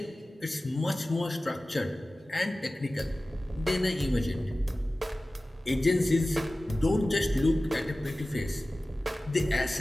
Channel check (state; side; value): normal; both; correlation 0.97